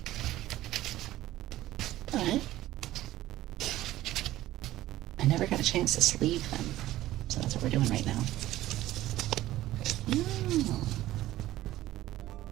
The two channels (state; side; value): quieter; left; 15.2 dB